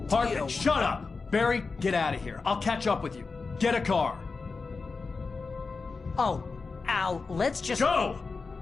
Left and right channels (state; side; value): quieter; right; 4.4 dB